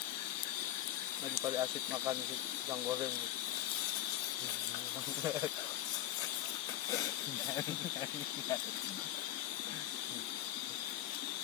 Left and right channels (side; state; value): right; quieter; 13.3 dB